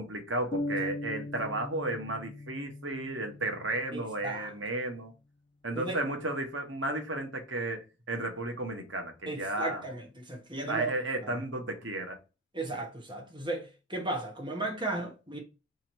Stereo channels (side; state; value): both; normal; correlation 0.13